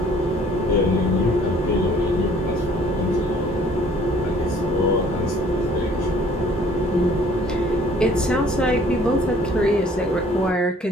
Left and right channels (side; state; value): both; normal; correlation 0.56